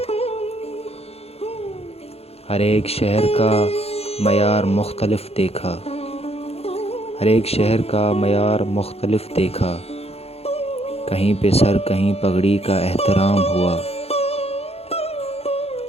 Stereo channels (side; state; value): right; late; 0.29 ms